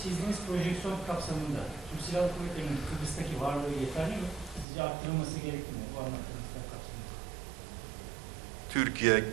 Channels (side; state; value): left; drops out; at 4.7 s